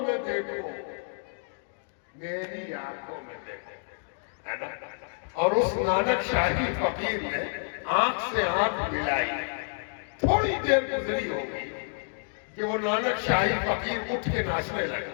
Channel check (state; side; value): silent; right; 59 dB below the other